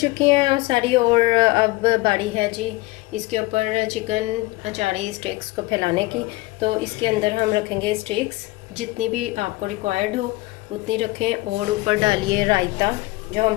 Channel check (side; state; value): right; quieter; 20.9 dB